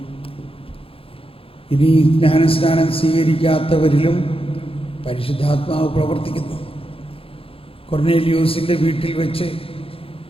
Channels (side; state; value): right; late; 0.27 ms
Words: ഇനി ജ്ഞാനസ്നാനം സ്വീകരിക്കാത്തവരിലും പരിശുദ്ധാത്മാവ് പ്രവർത്തിക്കുന്നു. കൊർന്നേലിയോസിൻ്റെ വീട്ടിൽ വെച്ച്